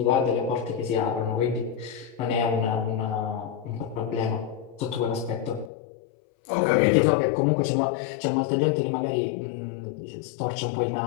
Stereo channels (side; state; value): right; drops out; at 5.7 s